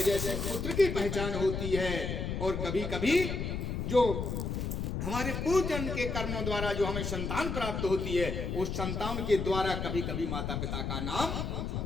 से पुत्र की पहचान होती है, और कभी कभी जो हमारे पूर्व जन्म के कर्मों द्वारा जो हमें संतान प्राप्त होती है, उस संतान के द्वारा कभी कभी माता पिता का नाम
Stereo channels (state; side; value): noise; left; rumble, 3 dB below the sound